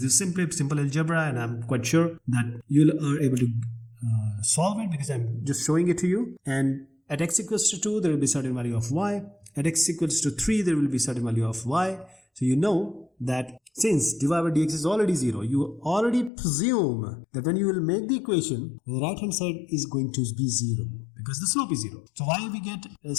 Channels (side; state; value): right; drops out; at 16.3 s